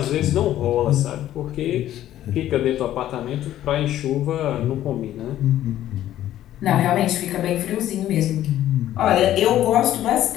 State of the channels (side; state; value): right; quieter; 12.7 dB